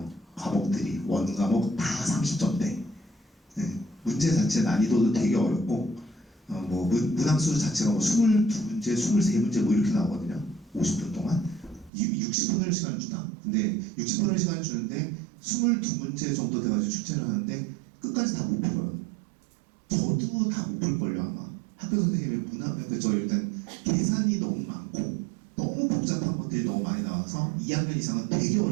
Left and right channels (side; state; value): left; drops out; at 11.9 s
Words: 과목들이 원과목 다 30점대. 네. 문제 자체 난이도도 되게 어렵고 뭐 문항수 자체가 뭐 22문제, 23문제 뭐 이렇게 나오거든요. 50분 동안 60분을 시간을 주나? 근데 60분을 시간을 주는데 22문제 정도 돼가지고 출제를 하는데 끝까지 다 못 풀어요. 저도 다 못 풀걸요 아마. 학교 선생님의 저 일단 계산이 너무 많고 너무 복잡한 것들이 너무 많이 나와서 2학년 이상은 되게